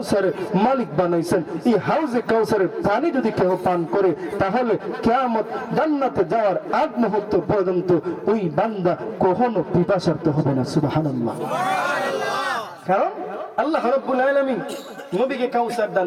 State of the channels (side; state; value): both; identical; correlation 1.00